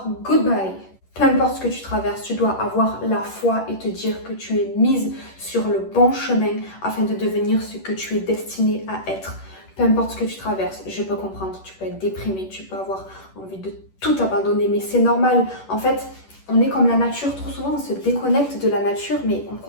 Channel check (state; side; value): late; right; 10 ms